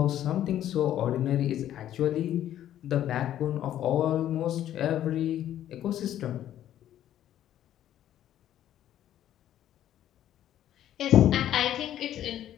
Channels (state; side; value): quieter; right; 11.8 dB